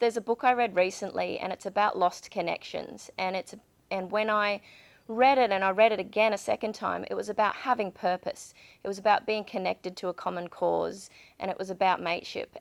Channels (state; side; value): identical; both; correlation 1.00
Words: a book I read recently, and it's about lost connections. And when I read it, and I read it again a second time, it was about having purpose. It was about being connected to a common cause, and it was about mateship.